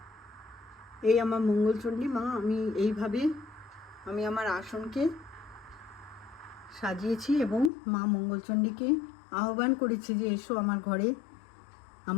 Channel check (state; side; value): drops out; right; at 7.7 s